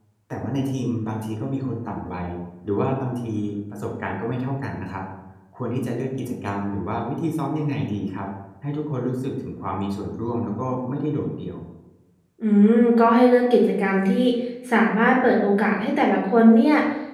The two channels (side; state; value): both; identical; correlation 1.00